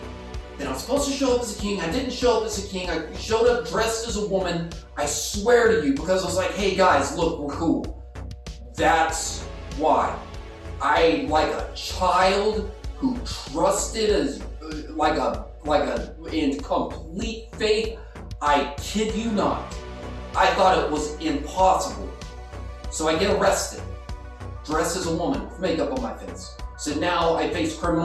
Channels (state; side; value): identical; both; correlation 1.00